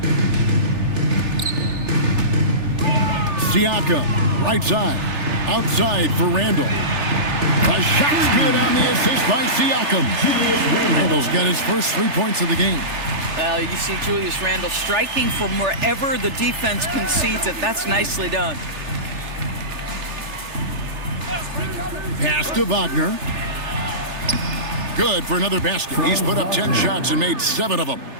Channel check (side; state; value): left; late; 3.3 ms